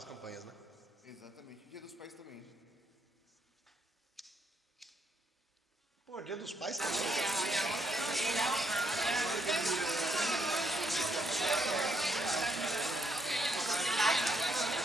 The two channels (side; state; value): both; normal; correlation 0.74